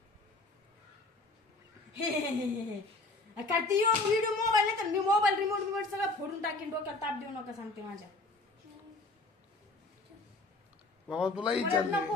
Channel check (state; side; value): quieter; right; 3.2 dB